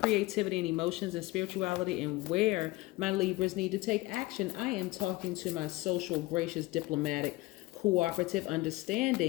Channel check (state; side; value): quieter; right; 20.1 dB